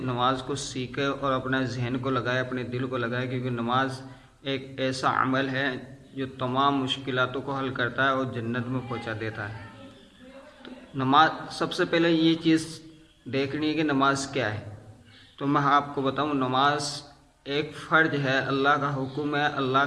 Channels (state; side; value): identical; both; correlation 1.00